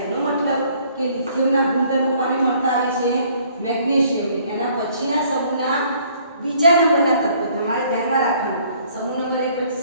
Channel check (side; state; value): both; inverted; correlation -0.61